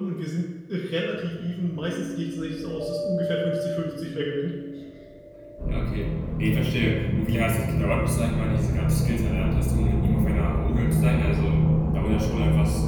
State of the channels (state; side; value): identical; both; correlation 1.00